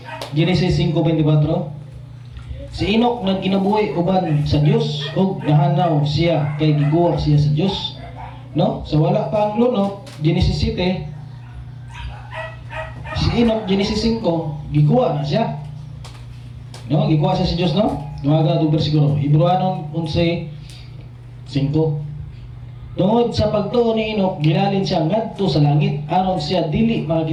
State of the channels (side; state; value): both; identical; correlation 1.00